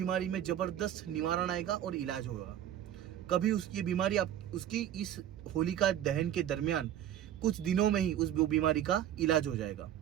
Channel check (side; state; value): left; quieter; 11.1 dB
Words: में जबरदस्त निवारण आएगा और इलाज होगा। कभी उसकी बीमारी उसकी इस होलिका दहन के दरमियान कुछ दिनों में ही उस बीमारी का इलाज हो जाएगा।